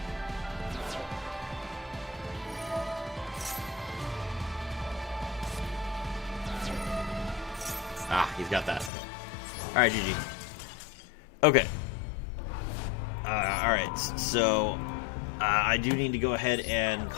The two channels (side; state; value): right; drops out; at 8.9 s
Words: Ah, he's got that. Alright, GG. Okay. Alright, so I do need to go ahead and